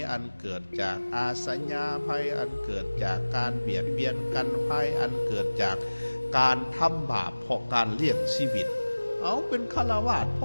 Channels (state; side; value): inverted; both; correlation -1.00